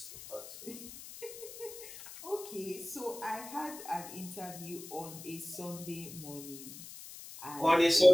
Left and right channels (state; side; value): noise; left; hiss, 13 dB below the sound